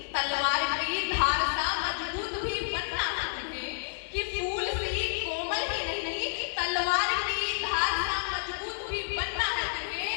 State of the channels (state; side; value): silent; right; digital silence